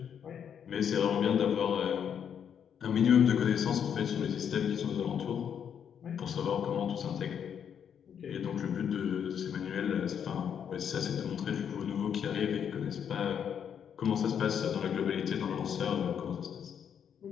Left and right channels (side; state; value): right; quieter; 8.2 dB